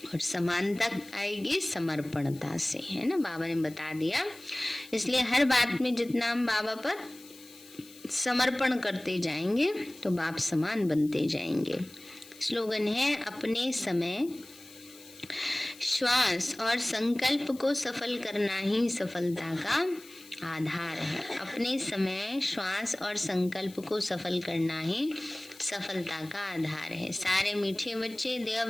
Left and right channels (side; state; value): left; noise; hiss, 21 dB below the sound